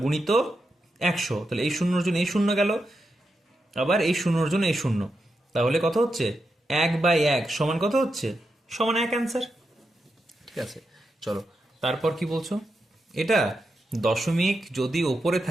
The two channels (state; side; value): normal; both; correlation 0.86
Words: গুণিত 100, তাহলে এই শূন্যর জন্য এই শূন্য গেল, আবার এই শূন্যর জন্য এই শূন্য, তাহলে কত হচ্ছে 1/1 সমান কত হচ্ছে, সমান 1 অ্যান্সার, ঠিক আছে। চলো তারপর কি বলছো, এটা দশমিক যদি ওপরে